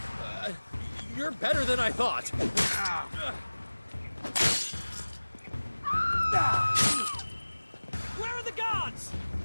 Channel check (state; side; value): inverted; both; correlation -1.00